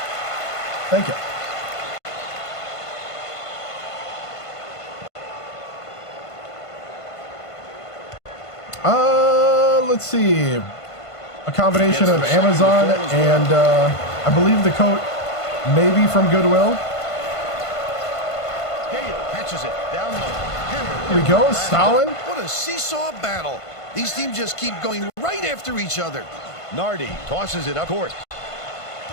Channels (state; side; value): late; right; 1.5 ms